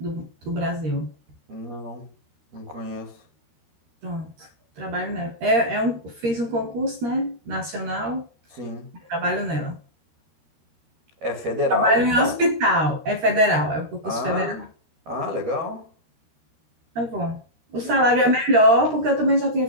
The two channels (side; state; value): left; late; 13 ms